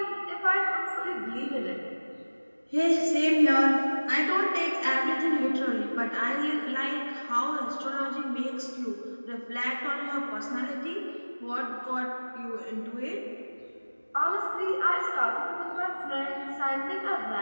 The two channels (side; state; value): both; inverted; correlation -1.00